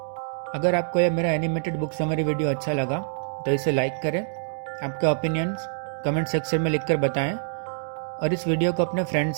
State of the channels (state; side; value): silent; left; digital silence